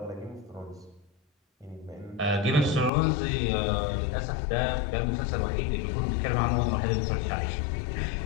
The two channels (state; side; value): drops out; right; at 2.9 s